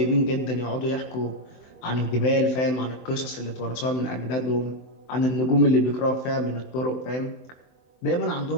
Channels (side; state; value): right; late; 23 ms